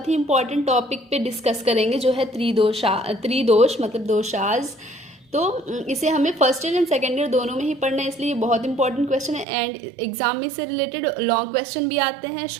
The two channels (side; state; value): left; drops out; at 9.5 s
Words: ही इंपॉर्टेंट टॉपिक पे डिस्कस करेंगे जो है त्रिदोष मतलब दोषाज। तो इसे हमें first year and second year दोनों में ही पढ़ना है, इसलिए ये बहुत इंपॉर्टेंट क्वेश्चन है। एंड एग्जाम में से रिलेटेड लॉन्ग क्वेश्चन भी आते हैं,